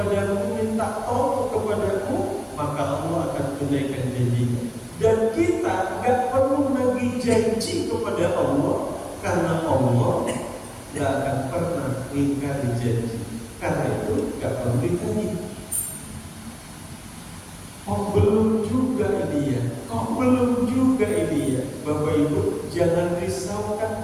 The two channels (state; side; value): identical; both; correlation 1.00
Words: minta tolong kepadamu, maka Allah akan tunaikan janjinya. Dan kita gak perlu nagih janji kepada Allah, karena Allah gak akan pernah ingkari janji. Karena itu gak perlu ditagih. Kok belum juga ini ya? Bapak Ibu, jangan